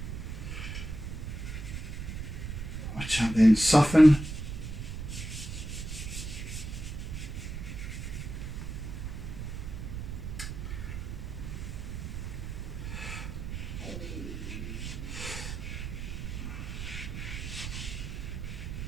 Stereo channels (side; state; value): right; noise; rumble, 6 dB below the sound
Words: Which I'll then soften.